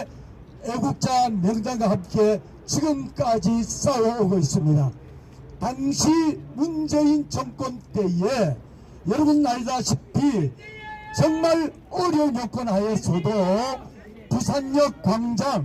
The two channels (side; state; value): both; identical; correlation 1.00